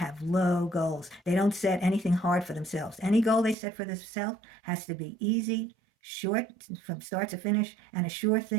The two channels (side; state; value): left; drops out; at 3.6 s